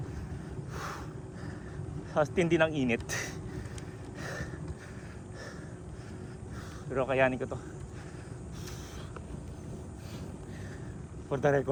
Tindi ng init. Pero kayanin ko to. For the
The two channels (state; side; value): identical; both; correlation 1.00